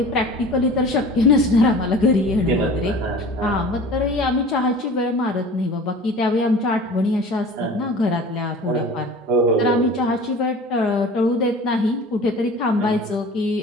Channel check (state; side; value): normal; both; correlation 0.41